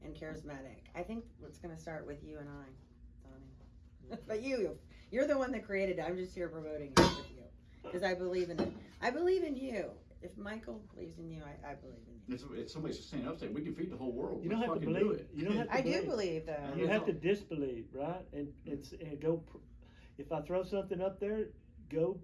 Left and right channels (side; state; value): both; identical; correlation 1.00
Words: and charismatic? I think it's going to start with you and I, Donnie. But you're the one that created it. I'm just here promoting it with you because I believe in it. I believe in you. If Michael believes in you, I believe in you. It's somebody's standing up saying we can feed the whole world. You don't have to believe. You don't have to I believe. do believe though. You have to disbelieve, right? And go. If I throw something up there, go